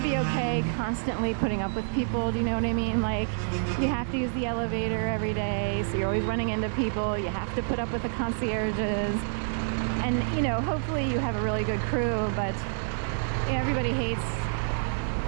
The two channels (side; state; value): left; silent; digital silence